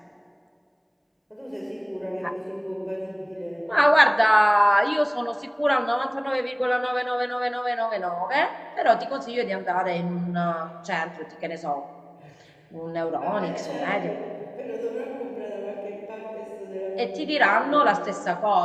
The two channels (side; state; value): both; identical; correlation 1.00